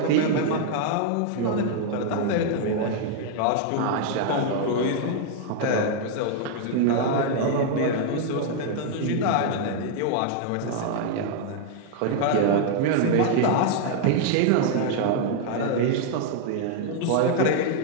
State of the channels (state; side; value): different; both; correlation 0.00